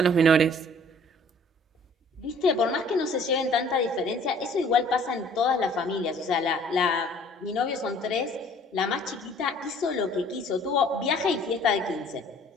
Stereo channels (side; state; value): both; normal; correlation 0.54